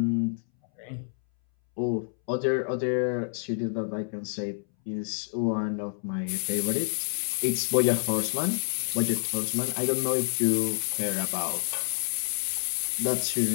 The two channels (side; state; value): right; silent; 59 dB below the other